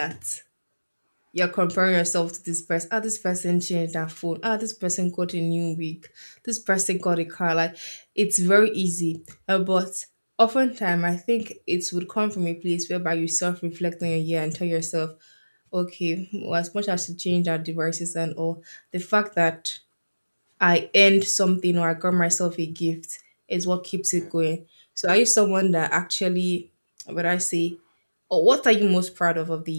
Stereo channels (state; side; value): inverted; both; correlation -1.00